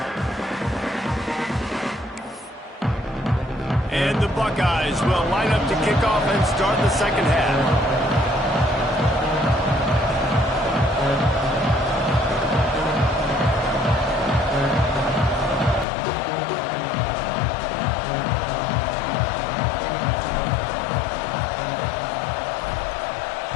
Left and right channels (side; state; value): right; drops out; at 15.9 s